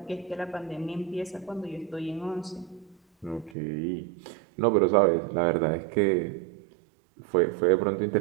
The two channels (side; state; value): left; drops out; at 3.6 s